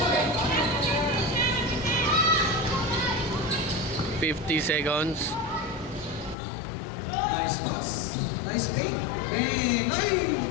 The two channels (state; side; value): drops out; right; at 6.4 s